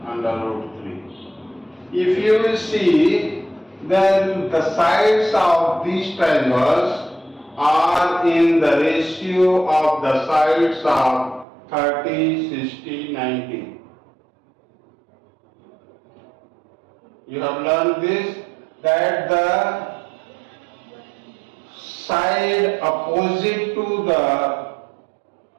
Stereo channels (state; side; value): drops out; left; at 11.5 s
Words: under root 3. If you will see, then the sides of these triangles are in the ratio of the sides of 30, 60, 90. You have learned this, that the side opposite to the